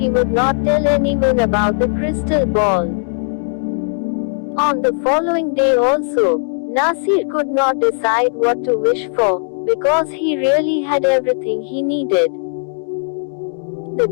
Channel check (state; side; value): silent; right; digital silence